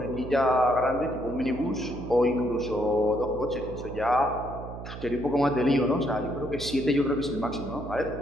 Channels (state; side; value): noise; right; hum, 11 dB below the sound